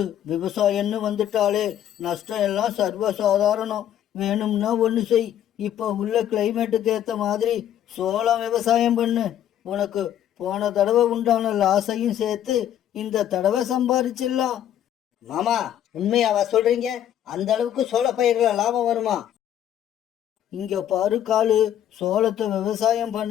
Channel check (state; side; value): quieter; right; 10.8 dB